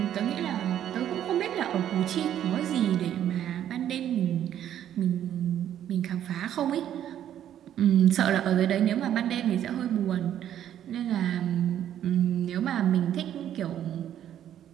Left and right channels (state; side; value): quieter; left; 10.7 dB